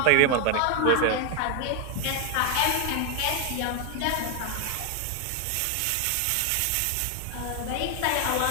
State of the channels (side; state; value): both; different; correlation 0.00